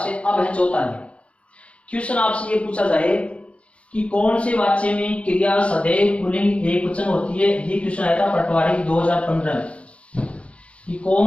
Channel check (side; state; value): right; late; 0.062 ms